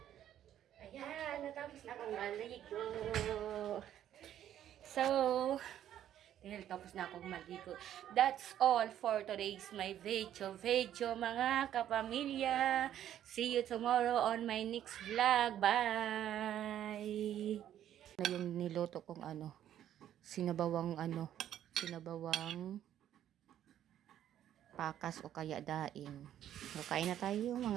Ayan, natapos na akong maligo. So, dahil tapos na akong maligo. That's all for today's my video mga kapamilya. See you tomorrow on my next vlog. Bye! Na yung niloto kong sinabawang pakas o kaya daing. So, kain na tayo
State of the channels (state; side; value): quieter; left; 11.1 dB